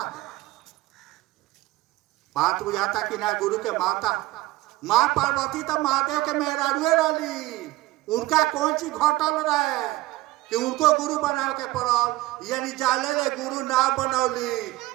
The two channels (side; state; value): left; quieter; 18.3 dB